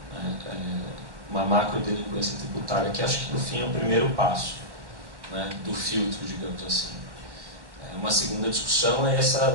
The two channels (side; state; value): left; late; 1.1 ms